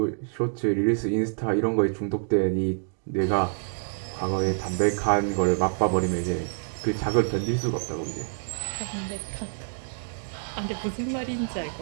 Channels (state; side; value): silent; left; digital silence